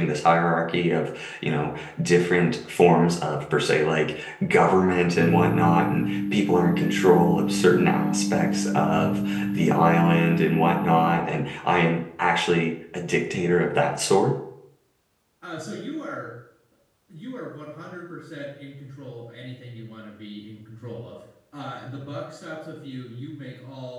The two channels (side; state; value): both; identical; correlation 1.00